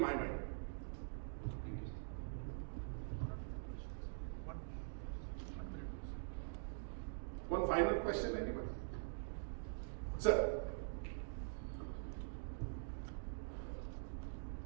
mind. Thank you. One final question, anybody? Sir.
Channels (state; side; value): silent; left; digital silence